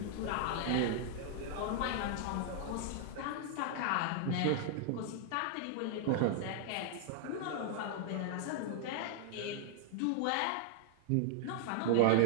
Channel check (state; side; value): different; both; correlation 0.00